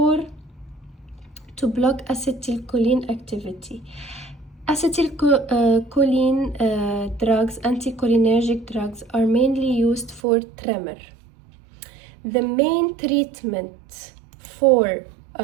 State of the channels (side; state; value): left; drops out; at 10.2 s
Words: to block acetylcholine activity. Acetylcholine drugs, anticholinergic drugs, are mainly used for tremor. The main treatment for